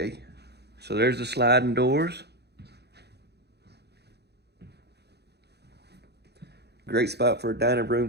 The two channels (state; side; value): late; left; 0.48 ms